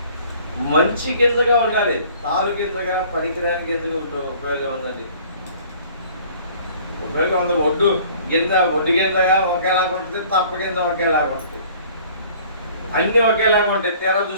మంచి గింజగా ఉండాలి. తాలు గింజగా పనికిరాని గింజగా ఉపయోగం ఉందండి. ఉపయోగం ఉంది. ఒడ్డు గింజగా ఒకేలాగా ఉంటుంది, తప్ప గింజ ఒకేలాగా ఉంటుంది, అన్నీ ఒకేలాగా ఉంటాయి. తీరా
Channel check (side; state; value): both; inverted; correlation -0.52